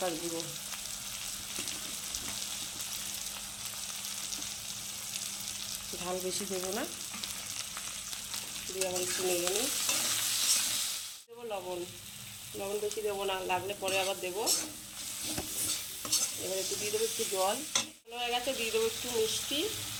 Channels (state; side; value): identical; both; correlation 1.00